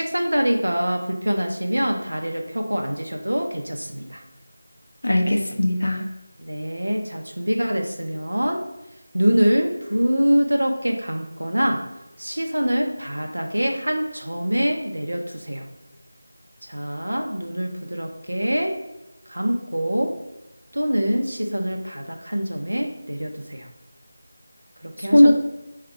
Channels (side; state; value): both; inverted; correlation -0.99